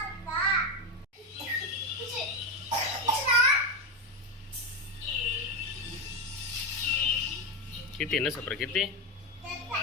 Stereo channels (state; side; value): normal; both; correlation 0.12